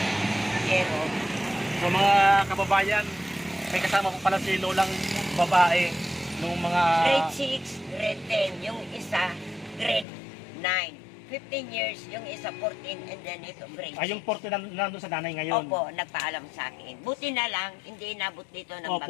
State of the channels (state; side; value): drops out; right; at 10.1 s